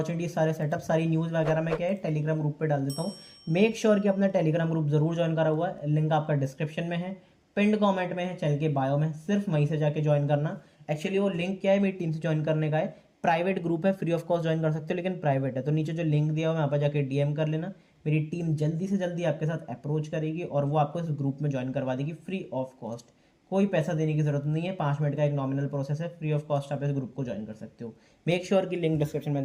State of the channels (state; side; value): identical; both; correlation 1.00